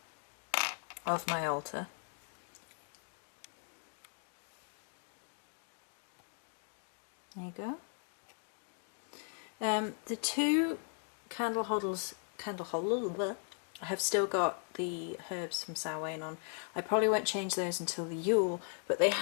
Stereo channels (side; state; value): right; silent; 53 dB below the other